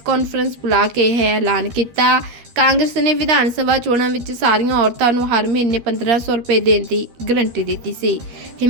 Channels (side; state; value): left; late; 13 ms